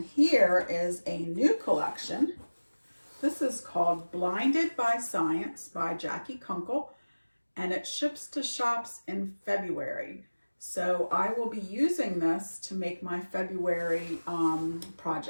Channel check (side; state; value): both; inverted; correlation -1.00